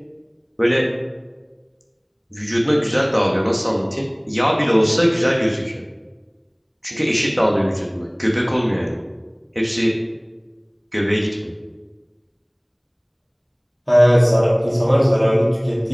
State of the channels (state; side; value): identical; both; correlation 1.00